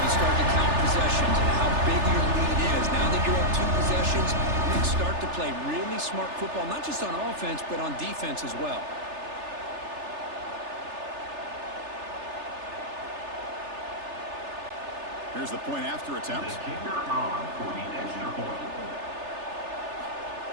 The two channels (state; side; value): late; left; 3.3 ms